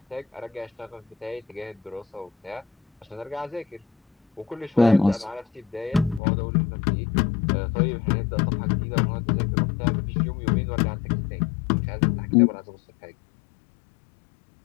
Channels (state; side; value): drops out; right; at 6.2 s